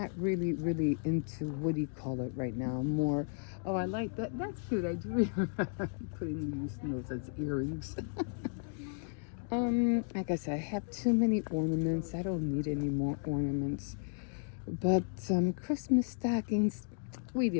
really into, what do you call it right now? More, oh, I like that. That's cute. I do remember putting these those as earrings. Like I said, I have too many ornaments. I don't need any more ornaments. But Christmas stockings, we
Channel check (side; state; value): right; silent; 55 dB below the other